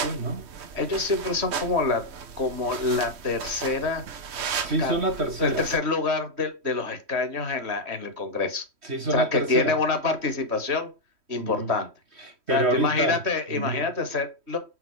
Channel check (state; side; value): late; left; 3.1 ms